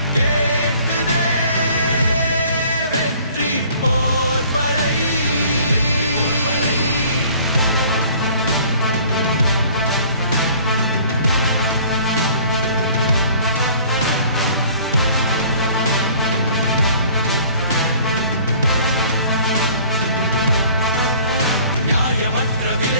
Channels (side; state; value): both; inverted; correlation -0.52